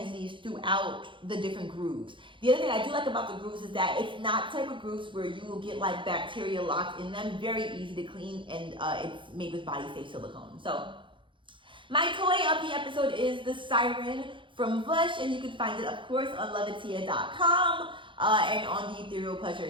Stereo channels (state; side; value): late; left; 0.24 ms